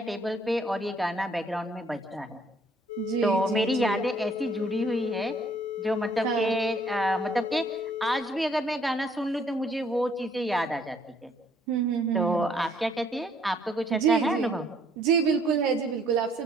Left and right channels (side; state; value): both; normal; correlation 0.63